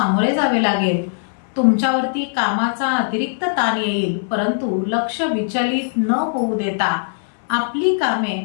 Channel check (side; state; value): right; silent; 62 dB below the other